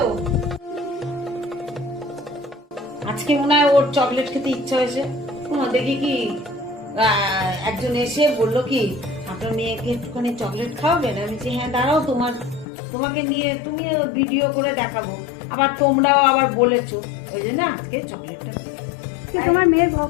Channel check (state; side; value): drops out; right; at 12.7 s